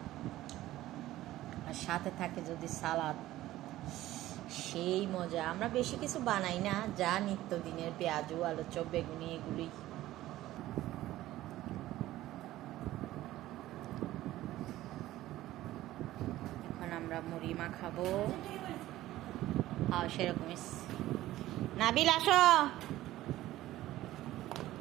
আর সাথে থাকে যদি সালাদ, সেই মজা। আমরা বেশি কিছু বানাই না, যা নিত্যদিনের পেঁয়াজু, আলু চপ, বেগুনি, এগুলি। এখন আমরা মুড়ি মাখাবো। সেরকমই। নাবিল আসো।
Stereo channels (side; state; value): left; quieter; 15.3 dB